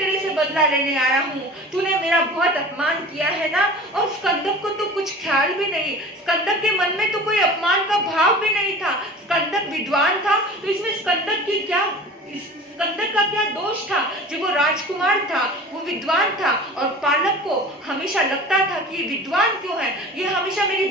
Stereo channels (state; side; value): normal; both; correlation 0.39